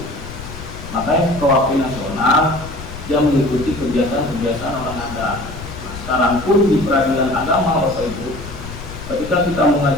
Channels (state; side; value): noise; left; rumble, 12 dB below the sound